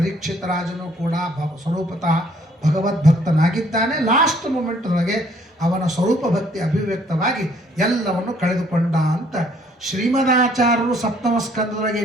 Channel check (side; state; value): both; normal; correlation 0.63